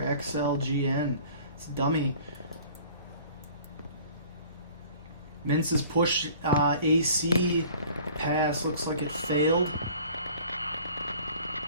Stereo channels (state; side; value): inverted; both; correlation -0.49